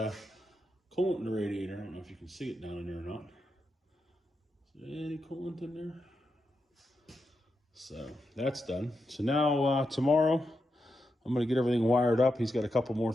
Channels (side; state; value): both; normal; correlation 0.86